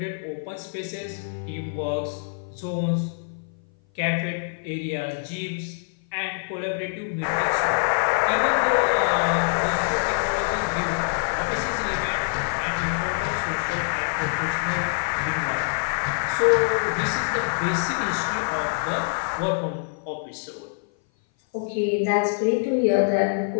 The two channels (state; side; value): silent; right; 57 dB below the other